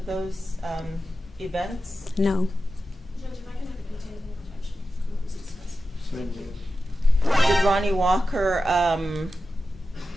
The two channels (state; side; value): normal; both; correlation 0.92